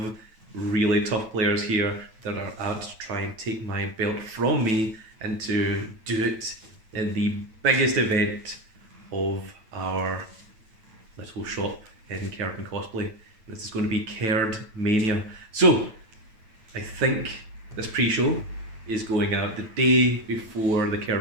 really tough players here that are out to try and take my belt from me and to do it in the biggest event of our little shop in Kerd Cosplay. This is going to be Kerd Mania. So, I think this pre-show is going out the day before the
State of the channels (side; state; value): left; late; 9.0 ms